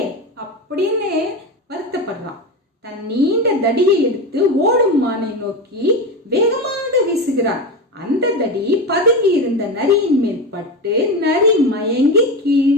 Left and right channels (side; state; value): both; normal; correlation 0.20